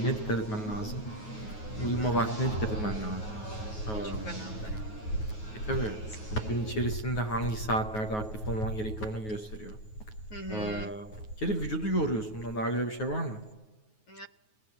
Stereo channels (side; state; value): right; late; 9.4 ms